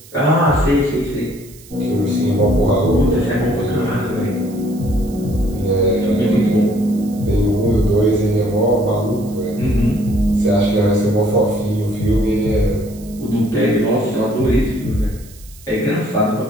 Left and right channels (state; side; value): noise; right; hiss, 22 dB below the sound